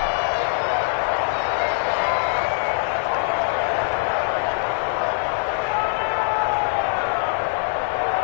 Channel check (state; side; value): silent; right; 64 dB below the other